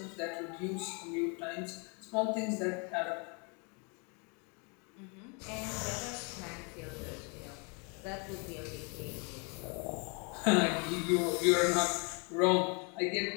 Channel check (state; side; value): quieter; right; 34.2 dB